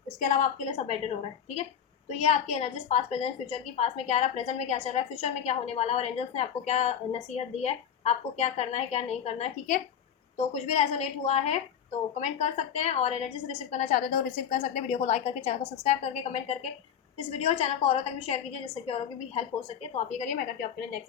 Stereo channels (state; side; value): quieter; right; 8.5 dB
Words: इसके अलावा आपके लिए सब बेटर हो रहा है, ठीक है। तो ये आपकी एनर्जीज पास्ट प्रेजेंट फ्यूचर की, पास्ट में क्या रहा, प्रेजेंट में क्या चल रहा है, फ्यूचर में क्या होने वाला है, और एंजल्स ने आपको क्या नसीहत दी है, आपको क्या करना है क्या नहीं करना है, ठीक है। तो कुछ भी रेजोनेट हुआ है तो कमेंट कर सकते हैं, और एनर्जी से रिसीव करना चाहते हैं तो रिसीव कर सकते हैं। वीडियो को लाइक करके, चैनल को सब्सक्राइब करके, कमेंट करके इस वीडियो और चैनल को औरों तक भी शेयर कीजिए, जिससे कि औरों की भी हेल्प हो सके। तो आप ये करिए, मैं करती हूँ आपके लिए